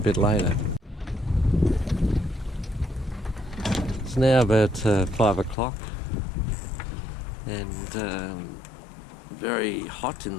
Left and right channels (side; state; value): right; drops out; at 5.6 s